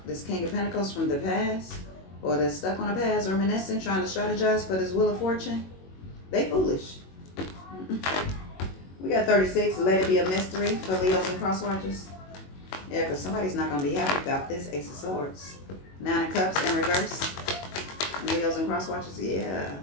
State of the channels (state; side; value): late; right; 21 ms